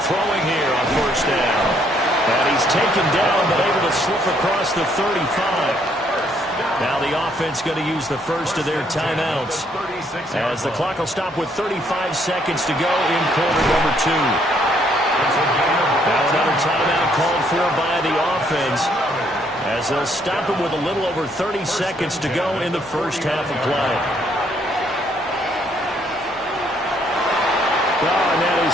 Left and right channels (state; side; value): normal; both; correlation 0.69